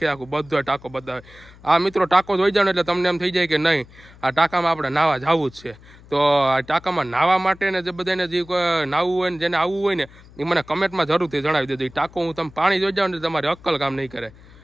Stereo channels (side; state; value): left; noise; hum, 23 dB below the sound